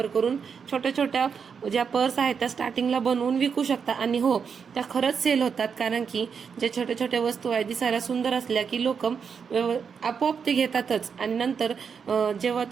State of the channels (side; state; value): left; quieter; 6.4 dB